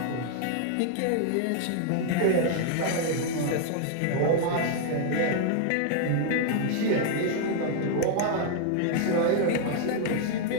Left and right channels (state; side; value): different; both; correlation 0.00